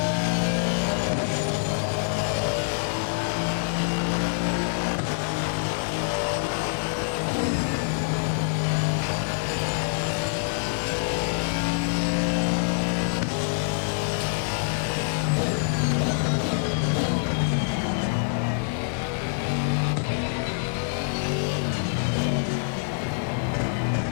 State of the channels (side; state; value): right; silent; digital silence